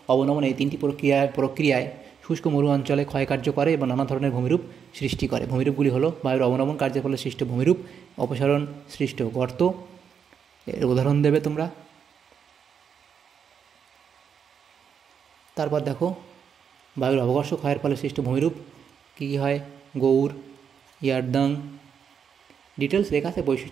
অবনমন এই 3টি প্রক্রিয়ায় শুষ্ক মরু অঞ্চলে ক্ষয়কার্য করে এবং নানা ধরনের ভূমিরূপ সৃষ্টি করে। ভূমিরূপগুলি হলো বায়ুর অবনমন কার্যের ফলে সৃষ্ট ভূমিরূপ, অপসারণ সৃষ্ট গর্ত, এর উদাহরণ দেবে তোমরা। তারপর দেখো বায়ুর অবঘর্ষ ক্ষয়ের ফলে সৃষ্ট ভূমিরূপ কী কী হয়, গৌর, ইয়ারদাং, ডিটেলস লেখা আছে,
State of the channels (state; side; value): quieter; left; 7.3 dB